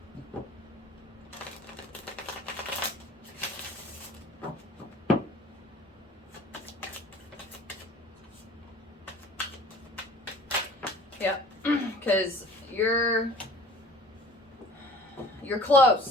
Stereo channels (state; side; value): normal; both; correlation 0.46